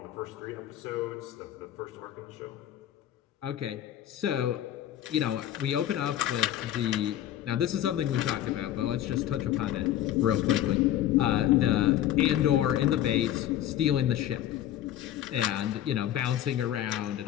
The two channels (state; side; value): quieter; right; 12.1 dB